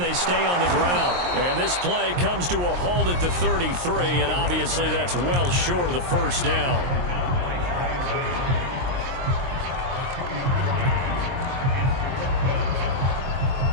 stay on the ground. And this play comes to a halt at the 33, and obviously that's well short of the first down.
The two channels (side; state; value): left; late; 23 ms